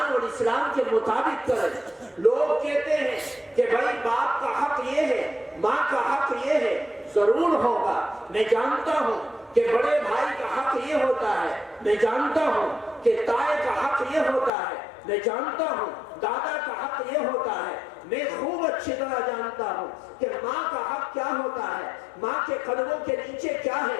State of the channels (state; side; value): drops out; right; at 14.5 s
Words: اور اسلام کے مطابق کریں۔ لوگ کہتے ہیں کہ بھائی باپ کا حق یہ ہے، ماں کا حق یہ ہے، ضرور ہوگا، میں جانتا ہوں کہ بڑے بھائی کا حق یہ ہوتا ہے، میں جانتا ہوں کہ تائے کا حق یہ ہوتا ہے، میں جانتا ہوں دادا کا حق یہ ہوتا ہے، میں خوب اچھی طرح جانتا ہوں کہ ماں کا حق کیا ہوتا ہے، ماں کے قدموں کے نیچے کیا